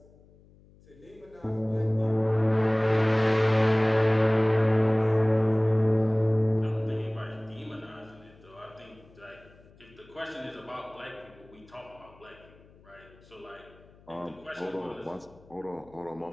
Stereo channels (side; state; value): left; noise; hum, 26 dB below the sound